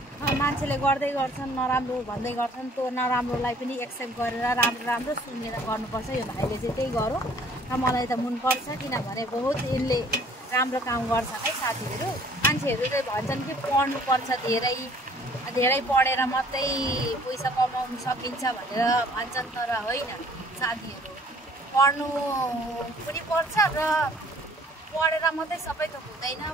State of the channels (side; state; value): both; normal; correlation 0.56